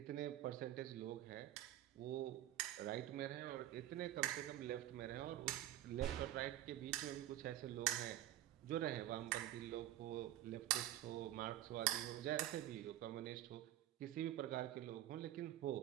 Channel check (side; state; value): left; quieter; 13.4 dB